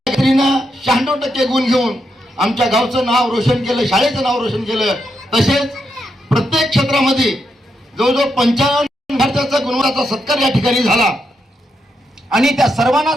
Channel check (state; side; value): normal; both; correlation 0.82